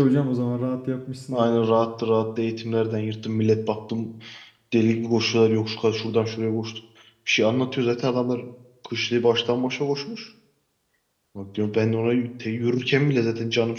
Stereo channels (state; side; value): identical; both; correlation 1.00